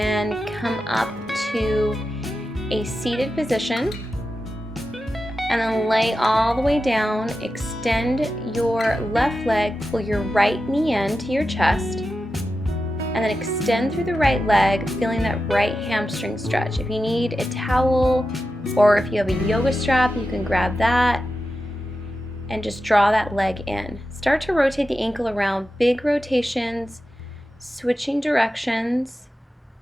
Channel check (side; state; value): both; normal; correlation 0.91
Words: come up to a seated position and then lay all the way down. Extend your left leg, pull your right knee in to your chest, and then extend through the right leg, feeling that right hamstring stretch. If you need a towel or if you have a yoga strap, you can grab that and just draw that leg in. Start to rotate the ankle around, big rotations, switching directions,